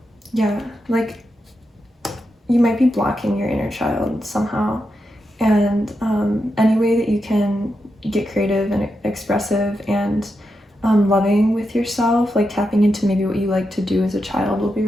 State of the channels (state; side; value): normal; both; correlation 0.86